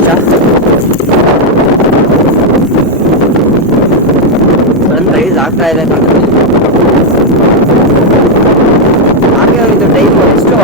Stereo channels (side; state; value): both; normal; correlation 0.01